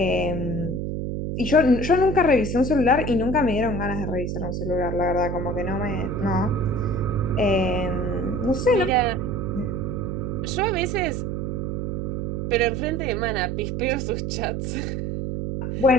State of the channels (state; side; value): noise; right; hum, 2 dB below the sound